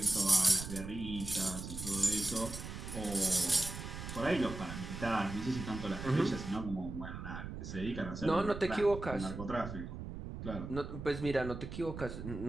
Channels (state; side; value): noise; right; rumble, 8 dB below the sound